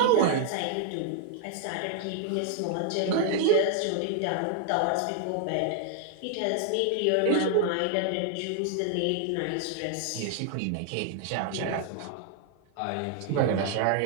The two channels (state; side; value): different; both; correlation 0.00